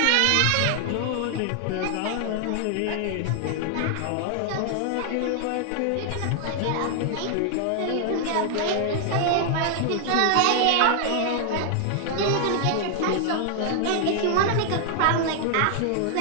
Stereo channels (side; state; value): both; different; correlation 0.00